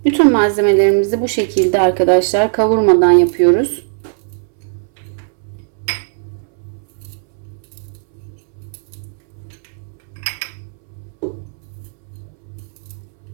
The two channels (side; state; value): left; silent; 68 dB below the other